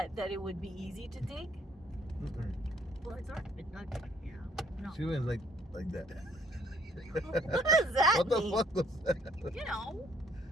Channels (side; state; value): both; normal; correlation 0.63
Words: That it would be easy to dig? Mm-mm. Well, it's already been dug. No. She went like that. What does that What the mean? fuck was that?